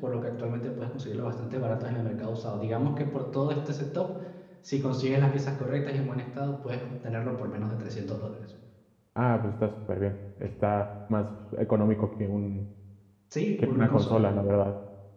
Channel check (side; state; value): both; identical; correlation 1.00